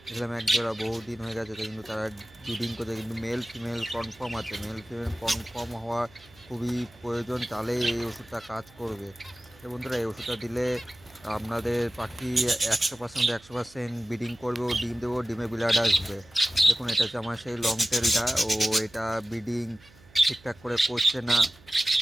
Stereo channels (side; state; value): right; noise; hum, 25 dB below the sound